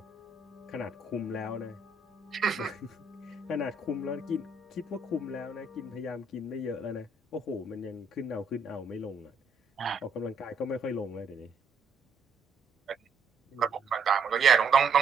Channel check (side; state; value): left; quieter; 3.8 dB